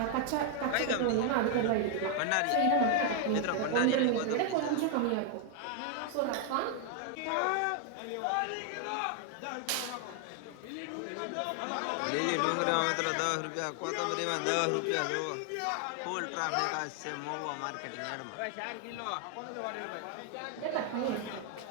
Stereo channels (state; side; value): different; both; correlation 0.00